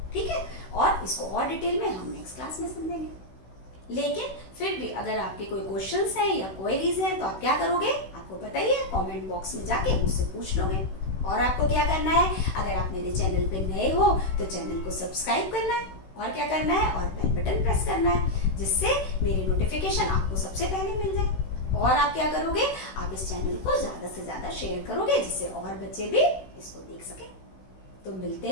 ठीक है। और इसको और डिटेल में हम नेक्स्ट क्लास में समझेंगे। लेकिन फिर भी अगर आपके कोई क्वेश्चंस हैं या क्वेरीज हैं तो आप क्या करोगे, आपको बताइए, कमेंट बॉक्स में जाके मुझसे पूछ लोगे। और आपको क्या करना है, अगर आप मेरे चैनल पे नए हो तो चैनल को सब्सक्राइब करना है और क्या करना है, और बेल बटन प्रेस करना है, जिससे मेरी नोटिफिकेशन आपको सबसे पहले मिल जाए। और आप क्या करोगे, आप इस चैनल को ज्यादा से ज्यादा शेयर करोगे, जिससे और बच्चे भी इसको देख सके। तो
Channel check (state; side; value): late; right; 16 ms